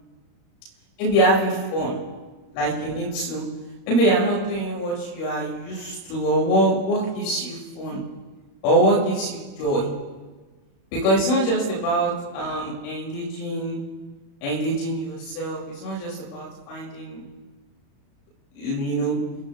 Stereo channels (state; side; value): late; right; 37 ms